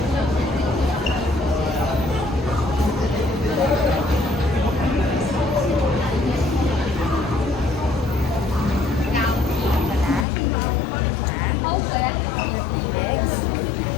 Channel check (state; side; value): drops out; right; at 10.2 s